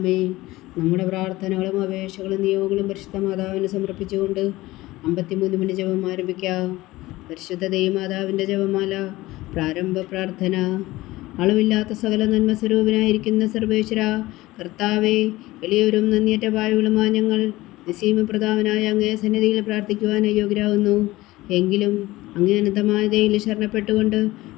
നമ്മുടെ പ്രാർത്ഥനകളും അപേക്ഷകളും നിയോഗങ്ങളും പരിശുദ്ധ മാതാവിന് സമർപ്പിച്ചുകൊണ്ട് 53 മണി ജപം ആരംഭിക്കാം. പരിശുദ്ധ ദൈവമാതാവിൻ്റെ ജപമാല. പ്രാരംഭ പ്രാർത്ഥന. അളവില്ലാത്ത സകല നന്മ സ്വരൂപനായിരിക്കുന്ന സർവേശ്വര കർത്താവേ, എളിയവരും നന്ദിയറ്റ പാവകളുമായ ഞങ്ങൾ നിസ്സീമപ്രതാപനായ അങ്ങേ സന്നിധിയിൽ പ്രാർത്ഥിക്കുവാൻ അയോഗ്യരാകുന്നു. എങ്കിലും അങ്ങേ അനന്തമായ ദയയിൽ ശരണപ്പെട്ടുകൊണ്ട്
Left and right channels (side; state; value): right; quieter; 18.4 dB